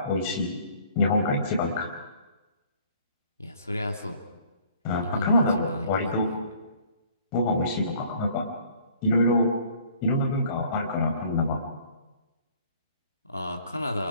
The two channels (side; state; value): both; inverted; correlation -0.56